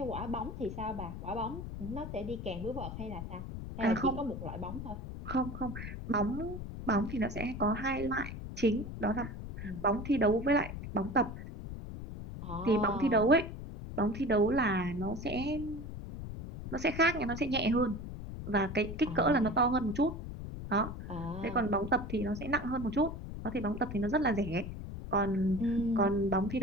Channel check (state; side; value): noise; left; rumble, 8 dB below the sound